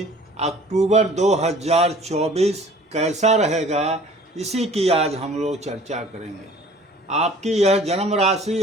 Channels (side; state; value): both; normal; correlation 0.50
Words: अक्टूबर 2024 कैसा रहेगा इसी की आज हम लोग चर्चा करेंगे। आपकी यह जन्म राशि